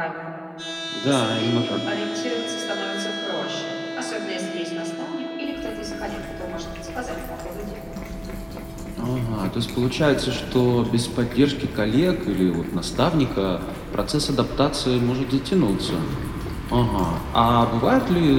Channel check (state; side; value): identical; both; correlation 1.00